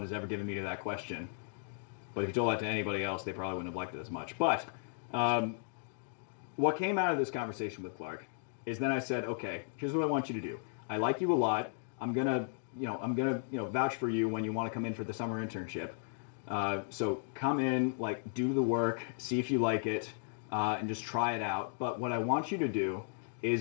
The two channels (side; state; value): right; silent; digital silence